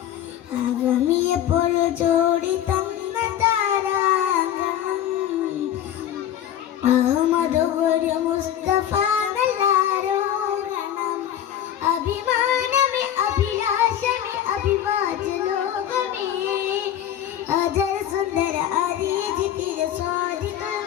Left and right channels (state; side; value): quieter; right; 10.9 dB